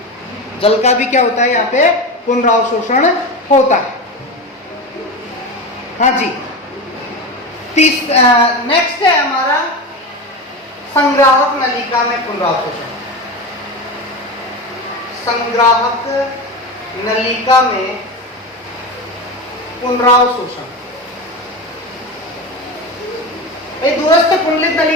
जल का भी क्या होता है, यहाँ पे पुनरावशोषण होता है। हाँ जी, नेक्स्ट है हमारा संग्राहक नलिका में पुनरावशोषण। संग्राहक नलिका में पुनरावशोषण, दूरस्थ कुंडलित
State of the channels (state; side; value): normal; both; correlation 0.23